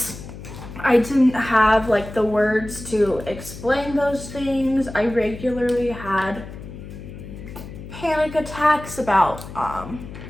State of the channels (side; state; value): left; noise; hum, 13 dB below the sound